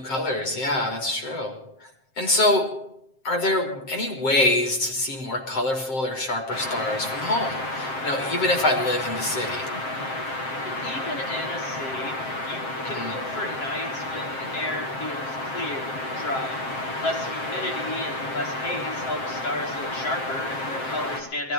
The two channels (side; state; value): right; late; 7.6 ms